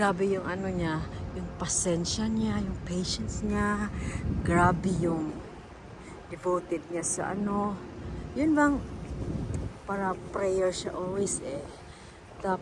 yung niya, yung pasensya niya, yung patience niya. Grabe yung devoted niya sa Yun bang, para prayer siya always eh.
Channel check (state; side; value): identical; both; correlation 1.00